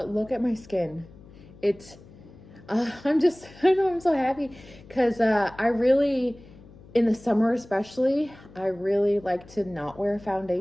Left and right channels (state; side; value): noise; left; hum, 21 dB below the sound